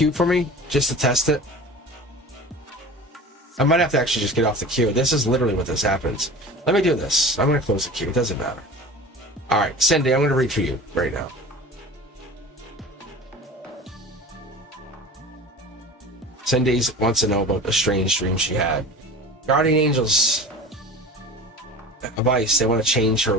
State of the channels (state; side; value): normal; both; correlation 0.36